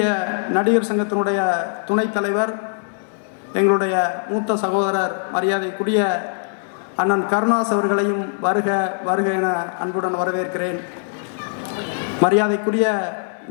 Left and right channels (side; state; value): right; silent; 65 dB below the other